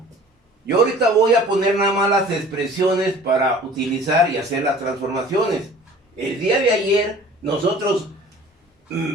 yo ahorita voy a poner nada más las expresiones para utilizar y hacer las transformaciones. El día de ayer nosotros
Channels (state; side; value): normal; both; correlation 0.47